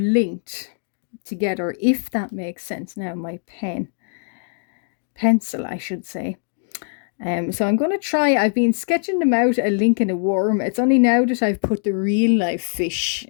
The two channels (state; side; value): silent; right; 64 dB below the other